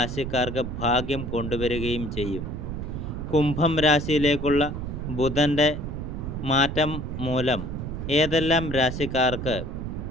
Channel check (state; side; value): noise; right; rumble, 5 dB below the sound